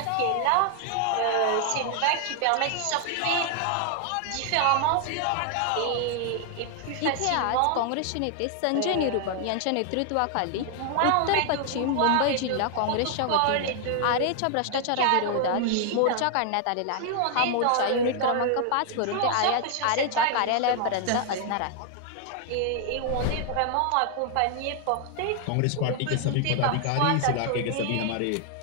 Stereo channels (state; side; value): different; both; correlation 0.00